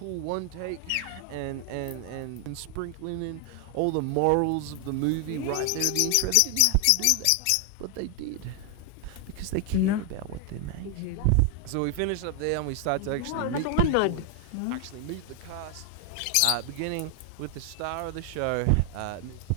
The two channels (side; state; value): both; different; correlation 0.00